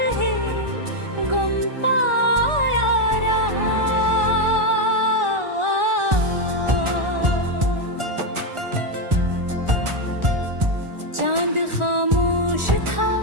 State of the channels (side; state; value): left; late; 1.4 ms